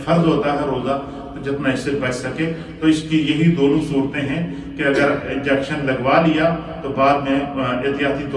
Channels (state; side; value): identical; both; correlation 1.00